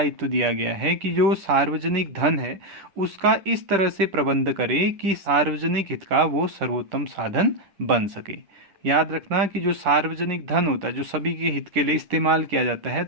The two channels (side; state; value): left; late; 10 ms